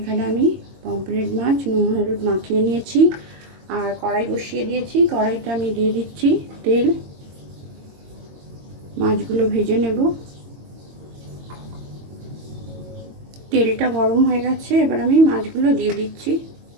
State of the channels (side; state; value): left; late; 22 ms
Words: আমি পমফ্রেট মাছ নুন হলুদ মাখিয়ে নিয়েছি আর কড়াই বসিয়ে দিয়েছি। কড়াইতে আমি দিয়ে দিচ্ছি তেল। মাছগুলো ভেজে নেব। তেলটা গরম হয়ে গেছে, এবার আমি মাছগুলো দিয়ে দিচ্ছি।